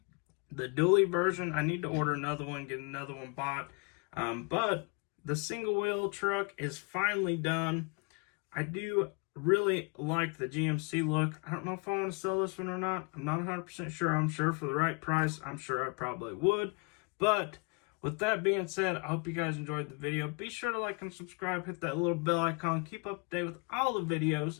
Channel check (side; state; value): right; quieter; 32.9 dB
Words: the dually version. I need to order another one, get another one bought. But the single wheel truck is finally done. I do really like the GMC look. I don't know if I want to sell this one or not. I'm not 100% sure. I'm sure for the right price, I'm sure I probably would. But with that being said, I hope you guys enjoyed the video. Be sure to like and subscribe, hit that little bell icon, keep up to date with all the